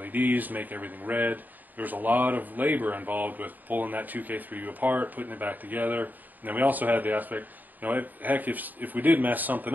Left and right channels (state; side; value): late; left; 0.085 ms